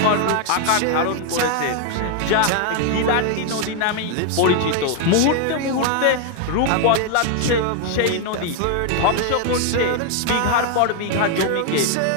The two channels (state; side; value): different; both; correlation 0.00